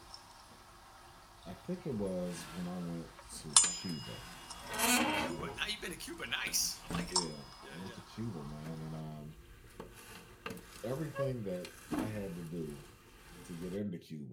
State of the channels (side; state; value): both; identical; correlation 1.00